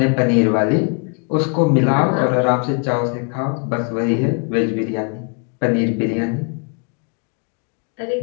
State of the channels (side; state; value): right; quieter; 38.9 dB